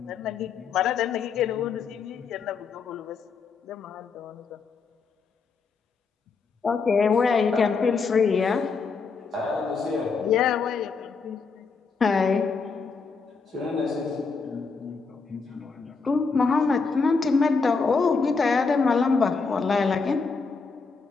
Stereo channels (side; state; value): right; quieter; 4.9 dB